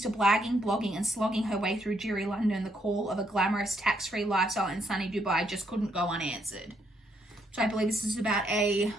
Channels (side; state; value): both; normal; correlation 0.74